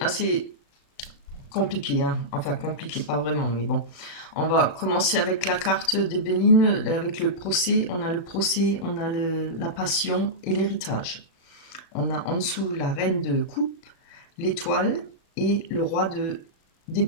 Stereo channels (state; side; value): late; right; 36 ms